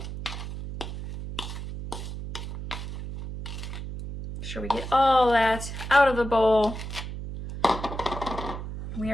Make sure we get all that out of the bowl. We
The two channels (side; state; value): right; noise; hum, 8 dB below the sound